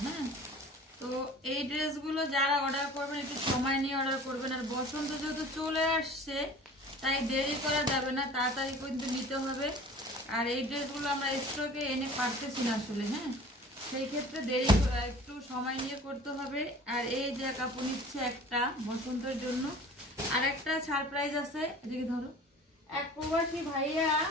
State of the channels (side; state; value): both; normal; correlation 0.44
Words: হ্যাঁ, তো এই ড্রেসগুলো যারা অর্ডার করবেন একটু সময় নিয়ে অর্ডার করবেন। আর বসন্ত যেহেতু চলে আসছে তাই দেরি করা যাবে না, তাড়াতাড়ি কিন্তু নিতে হবে। আর এই ড্রেসগুলো আমরা স্টকে এনে পারতেছি না আসলে। হ্যাঁ, সেই ক্ষেত্রে দেরি একটু সময় নিয়ে করতে হবে। আর এই যে কাপড় নিচ্ছে একটা বসন্তের জন্য, আর একটা সারপ্রাইজ আছে, এদিকে ধরো। এক প্রবাসী ভাইয়া,